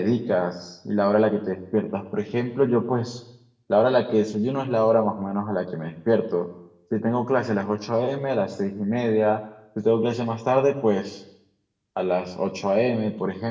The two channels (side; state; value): both; identical; correlation 1.00